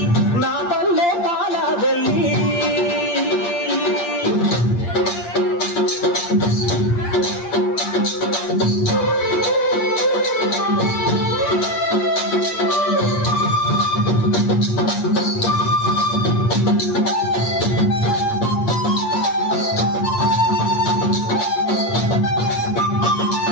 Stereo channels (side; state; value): right; late; 8.6 ms